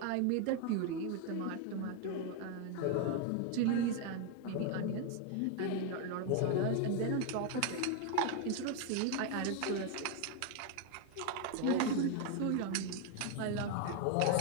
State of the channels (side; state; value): both; different; correlation 0.01